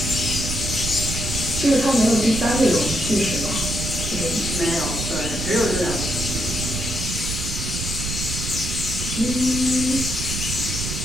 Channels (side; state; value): right; noise; rumble, 4 dB below the sound